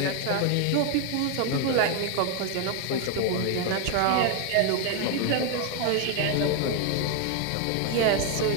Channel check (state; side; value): different; both; correlation 0.01